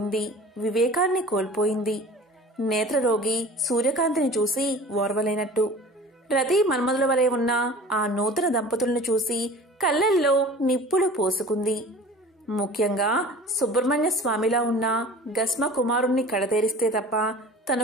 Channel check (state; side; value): normal; both; correlation 0.42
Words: వివేకాన్ని కోల్పోయింది. నేత్రరోగి సూర్యకాంతిని చూసి ఓర్వలేనట్టు రతి మన్మధుల వలె ఉన్న ఆ నూతన దంపతులను చూసి కళ్ళల్లో నిప్పులు పోసుకుంది. ముఖ్యంగా సుబ్రహ్మణ్య స్వామిలా ఉన్న గస్మ కుమారుణ్ణి కడతేరిస్తే తప్ప